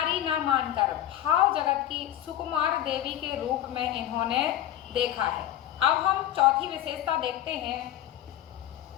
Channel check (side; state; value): right; quieter; 12.4 dB